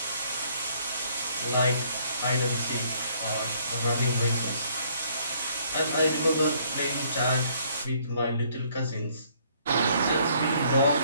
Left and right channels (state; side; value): inverted; both; correlation -0.64